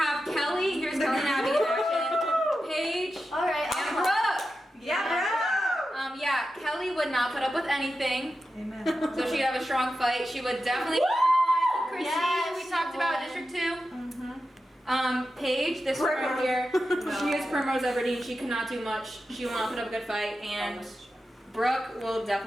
Kelly. Here's Kelly and Abby in action. Paige All right. and Brooke. Yeah, Yeah, Kelly would not put up with anything. Amen. So she'd have a strong fight. She would definitely put up with Christine. Yes, We she talked about would. District 2. Paige, this one right here. She is Primrose Everdeen. She cannot do much. She will not put up a good fight. And Brooke will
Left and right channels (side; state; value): both; normal; correlation 0.91